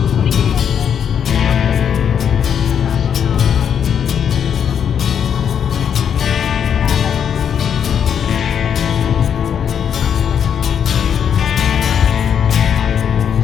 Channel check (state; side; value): quieter; right; 8.1 dB